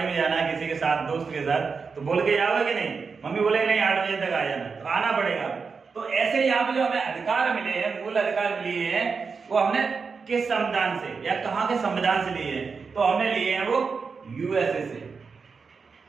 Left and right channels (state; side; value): quieter; left; 5.1 dB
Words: में जाना है किसी के साथ, दोस्त के साथ, तो बोल के जाओगे कि नहीं? मम्मी बोले नहीं 8 बजे तक आ जाना, तो आना पड़ेगा। तो ऐसे यहाँ पे जो हमें अधिकार मिले हैं, मूल अधिकार मिले हैं, वो हमने किस संविधान से या कहाँ के संविधान से लिए हैं? तो हमने लिए हैं वो यूएसए से।